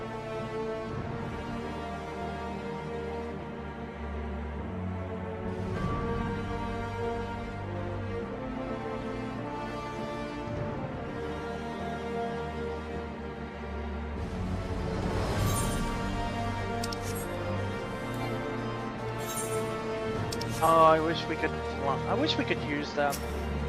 Oh, I wish we could use them.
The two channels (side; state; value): both; identical; correlation 1.00